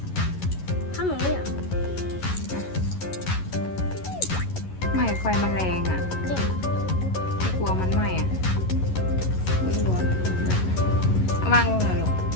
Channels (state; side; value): late; right; 11 ms